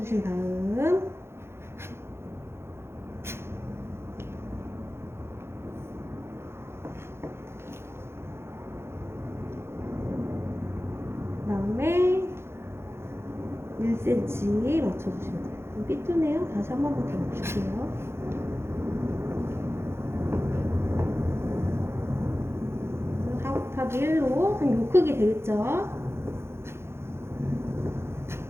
다음 그다음에 1cm 맞춰주시면 돼요. 삐뚤네요. 다시 한 번만 더 맞출게요. 그래서 4 곱하기 1로 한 요 크기 되겠죠?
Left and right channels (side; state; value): left; late; 0.12 ms